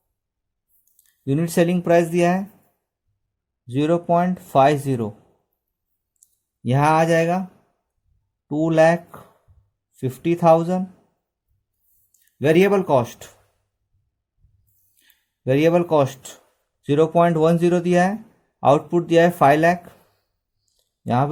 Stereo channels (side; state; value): both; identical; correlation 1.00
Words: unit selling price दिया है 0.50, यहां आ जाएगा 2,50,000. वेरिएबल कॉस्ट 0.10 दिया है, आउटपुट दिया है 5 लाख, यहाँ